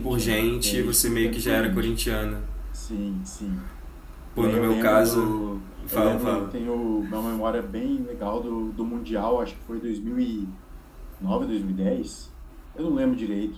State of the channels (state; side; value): identical; both; correlation 1.00